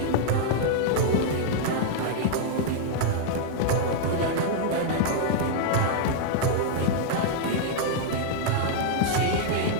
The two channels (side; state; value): both; different; correlation -0.01